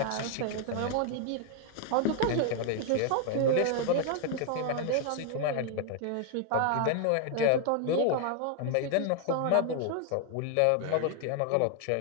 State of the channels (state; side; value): different; both; correlation 0.00